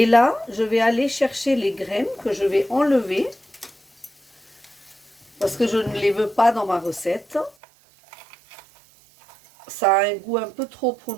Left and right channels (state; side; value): drops out; left; at 7.6 s